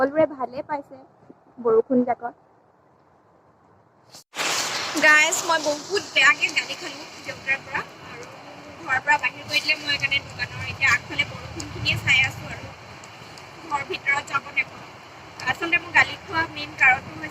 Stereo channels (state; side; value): identical; both; correlation 1.00